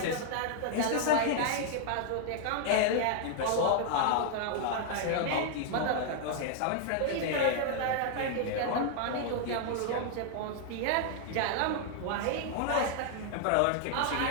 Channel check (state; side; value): different; both; correlation 0.00